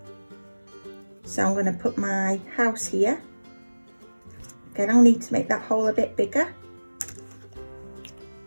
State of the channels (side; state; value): both; inverted; correlation -1.00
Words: So I'm going to put my house here. Again, I'll need to make that hole a bit bigger.